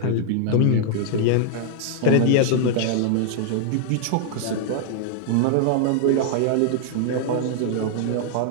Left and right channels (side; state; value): both; different; correlation 0.00